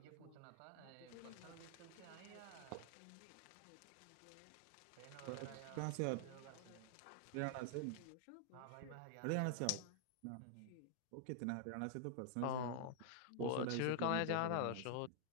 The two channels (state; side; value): different; both; correlation 0.00